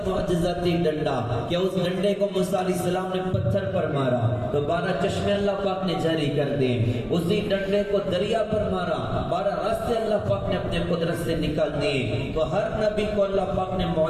معجزاتی ڈنڈا کہ اس ڈنڈے کو موسیٰ علیہ السلام نے پتھر پر مارا تو 12 چشمے اللہ پاک نے جاری کر دیے۔ اسی ڈنڈے کو دریا پر مارا، 12 راستے اللہ پاک نے اپنے قدرت سے نکال دیے۔ تو ہر نبی کو اللہ پاک نے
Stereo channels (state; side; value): identical; both; correlation 1.00